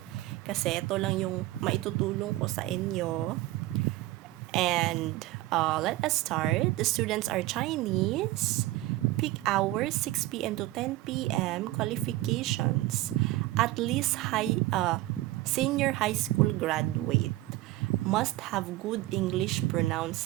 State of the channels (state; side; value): quieter; left; 17.4 dB